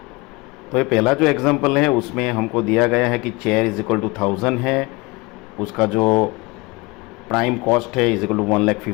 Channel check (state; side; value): quieter; right; 24.9 dB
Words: तो ये पहला जो एग्जाम्पल है उसमें हमको दिया गया है कि चेयर इज इक्वल टू 1000 है, उसका जो प्राइम कॉस्ट है is equal to